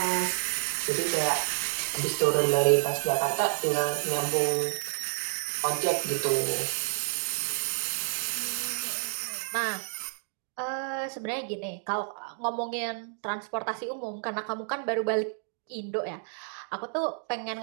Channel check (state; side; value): silent; left; digital silence